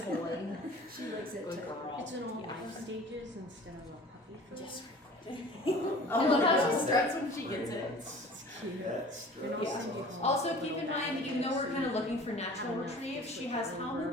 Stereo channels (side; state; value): both; normal; correlation 0.44